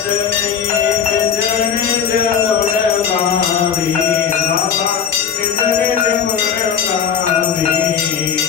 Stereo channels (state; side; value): quieter; right; 7.5 dB